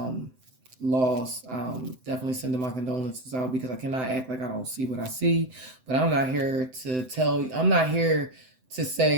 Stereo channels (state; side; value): late; left; 7.8 ms